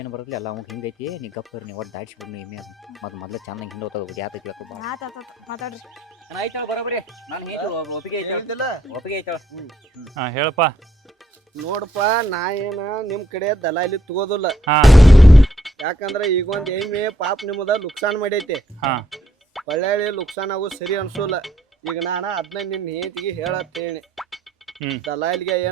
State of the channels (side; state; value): both; normal; correlation 0.72